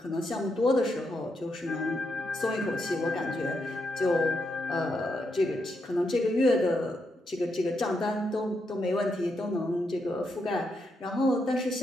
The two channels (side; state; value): both; normal; correlation 0.82